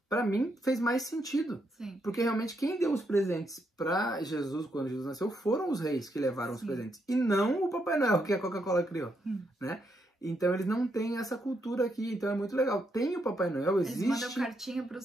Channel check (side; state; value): both; normal; correlation 0.79